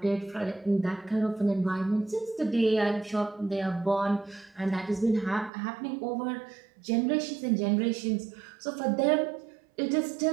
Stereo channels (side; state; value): left; drops out; at 5.5 s